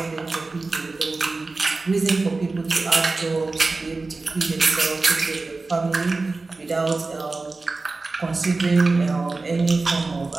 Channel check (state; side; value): quieter; left; 3.6 dB